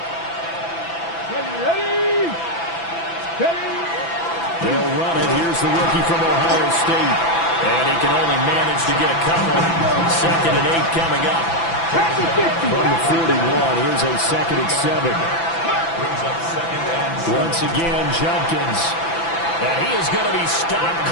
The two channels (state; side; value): late; right; 6.0 ms